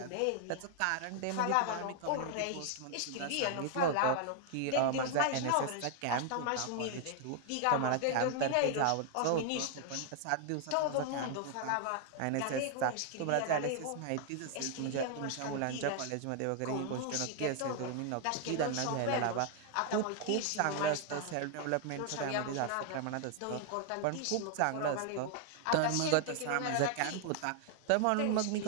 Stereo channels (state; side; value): different; both; correlation 0.00